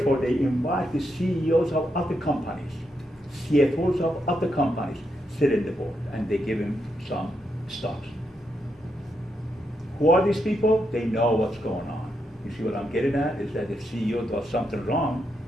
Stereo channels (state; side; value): normal; both; correlation 0.82